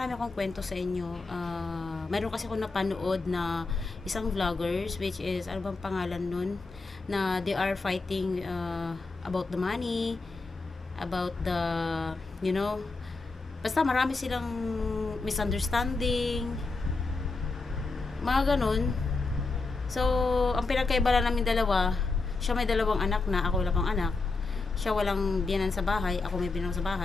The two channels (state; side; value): quieter; right; 3.8 dB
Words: akong kwento sa inyo. Mayroon kasi ako napanood na isang vloggers, which is ano bang pangalan nun, na they are fighting about the money, about the basta marami silang misunderstanding, mga ganun. So ang pinagkaiba lang namin dalawa, siya may dalawang anak na, ako wala pang anak. Siya walang biyanan sa bahay, ako may biyanan sa